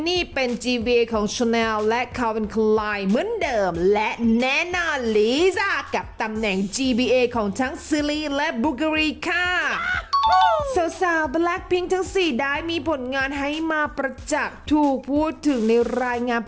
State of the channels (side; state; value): both; identical; correlation 1.00